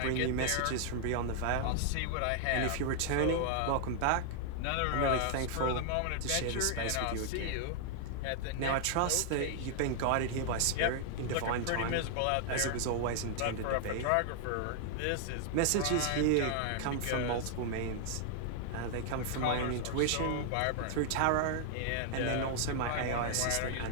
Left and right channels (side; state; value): both; different; correlation 0.00